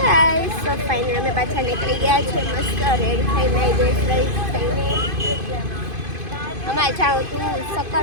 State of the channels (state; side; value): late; left; 2.5 ms